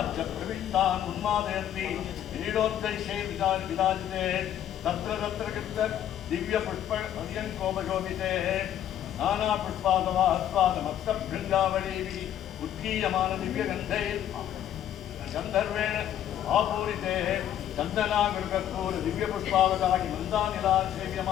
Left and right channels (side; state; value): right; quieter; 10.8 dB